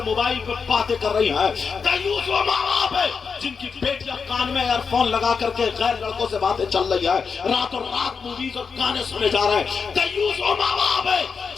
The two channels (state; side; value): quieter; right; 5.6 dB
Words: موبائل پہ باتیں کر رہی ہیں، دیوس وہ ماں باپ ہے جن کی بیٹیاں کان میں ایئر فون لگا کر کے غیر لڑکوں سے باتیں چل رہی ہے، رات اور رات موویز اور گانے سنے جا رہے ہیں، دیوس وہ ماں باپ ہے